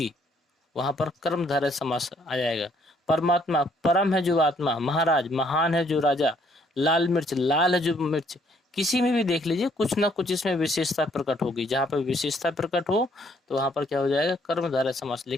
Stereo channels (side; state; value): both; normal; correlation 0.66